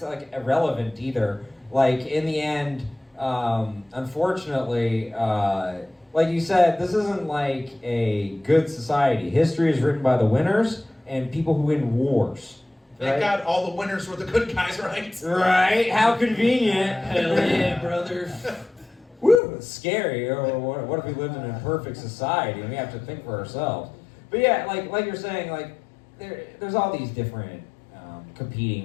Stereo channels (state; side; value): drops out; right; at 19.4 s